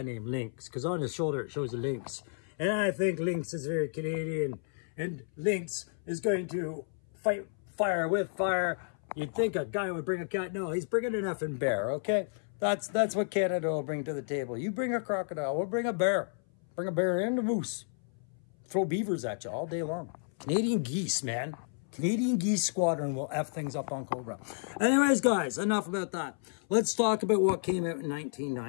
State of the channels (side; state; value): right; silent; 57 dB below the other